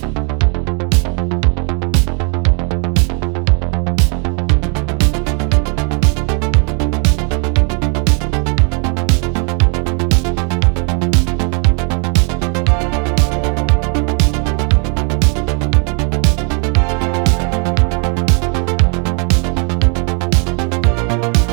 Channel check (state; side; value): quieter; left; 36.8 dB